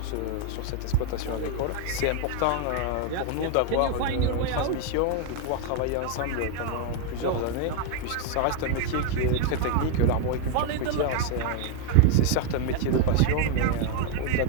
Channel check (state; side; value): different; both; correlation 0.01